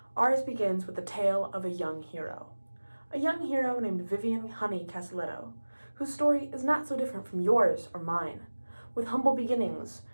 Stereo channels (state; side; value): inverted; both; correlation -1.00